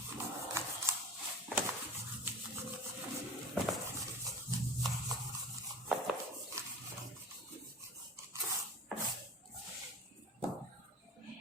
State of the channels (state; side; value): normal; both; correlation 0.38